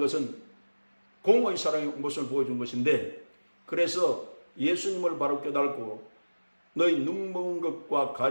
공의의 사랑의 모습을 보여준 것인데, 그래서 예수님을 바로 깨닫고 너희 눈먼 것과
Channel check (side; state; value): both; inverted; correlation -1.00